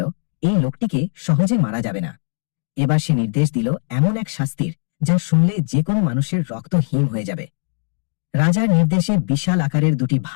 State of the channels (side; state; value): right; silent; 66 dB below the other